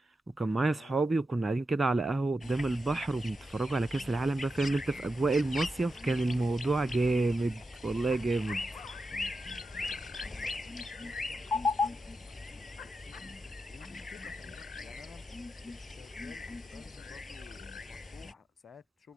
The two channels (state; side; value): normal; both; correlation 0.89